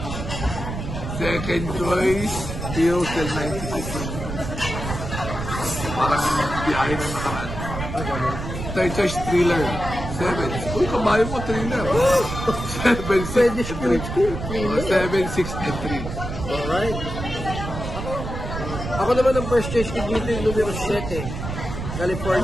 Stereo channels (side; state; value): right; noise; rumble, 6 dB below the sound